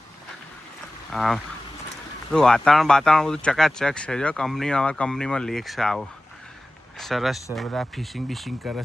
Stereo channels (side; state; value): both; normal; correlation 0.96